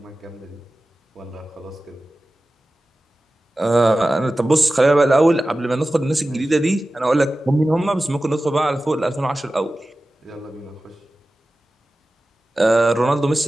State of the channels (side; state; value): both; normal; correlation 0.95